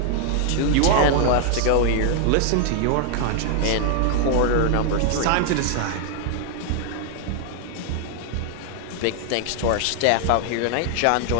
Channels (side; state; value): both; different; correlation 0.00